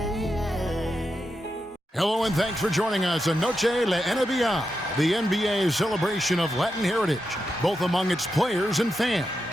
Hello and thanks for joining us on Noche La NBA, the NBA celebration of Latin heritage, both among its players and fans.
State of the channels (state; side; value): normal; both; correlation 0.87